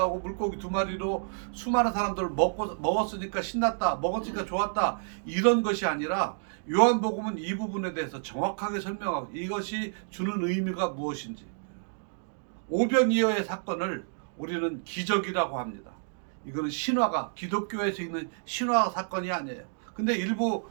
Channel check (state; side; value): silent; left; digital silence